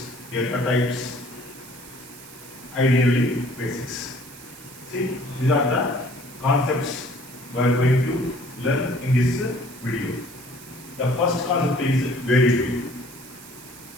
data types, ideally basics. See, these are the concepts we are going to learn in this video. The first concept is variable.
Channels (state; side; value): noise; right; hiss, 18 dB below the sound